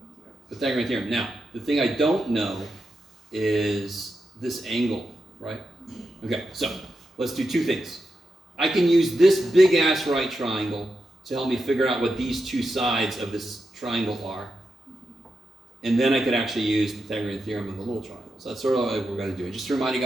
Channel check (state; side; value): normal; both; correlation 0.87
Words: Pythagorean theorem. Now, the thing I don't know is this angle, right? Okay, so let's do two things. I can use this big ass right triangle to help me figure out what these two sides of this triangle are. And then I could actually use Pythagorean theorem in the little triangle. So that's sort of what we're going to do. And just to remind you